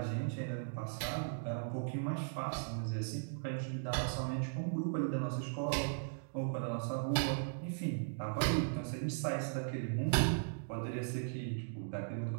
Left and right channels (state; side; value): silent; left; digital silence